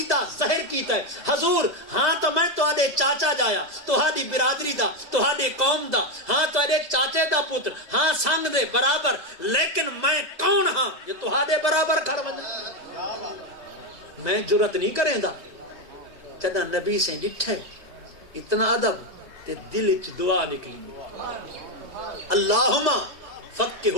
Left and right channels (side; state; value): left; late; 3.2 ms